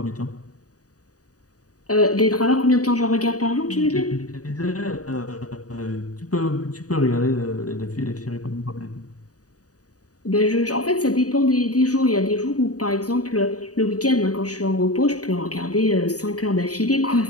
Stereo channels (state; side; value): late; right; 0.67 ms